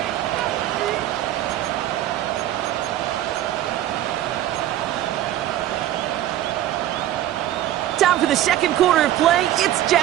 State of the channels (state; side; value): quieter; left; 13.0 dB